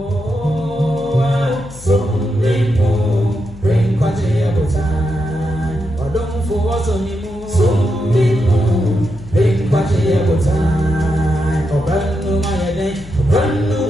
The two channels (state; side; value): noise; left; hum, 17 dB below the sound